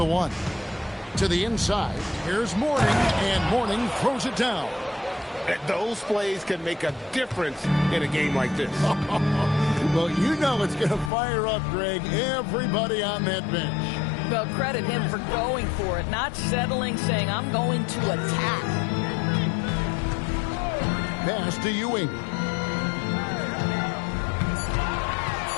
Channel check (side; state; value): right; drops out; at 11.1 s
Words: 1. To the inside, here's Mourning, and Mourning throws it down. Those plays can make a difference in a game like this. Well, you know it's going to fire up, Greg, everybody on that bench. Well, credit him for going for it, not settling, saying, I'm going to attack. Pass to Ewing.